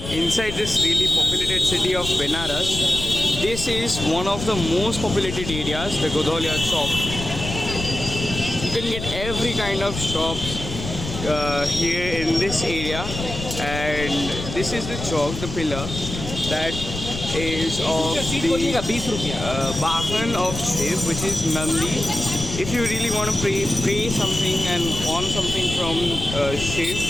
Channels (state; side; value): noise; left; rumble, 7 dB below the sound